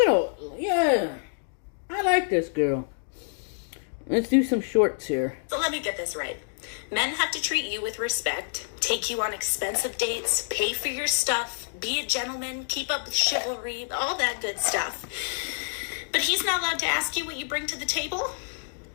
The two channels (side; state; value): right; silent; digital silence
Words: like this girl. Let's do some shorts here. So let me get this right. Men have to treat you with respect, take you on expensive dates, pay for your stuff, be a gentleman, keep up with chivalry, all that good stuff. But he's not allowed to ask you what you bring to the table?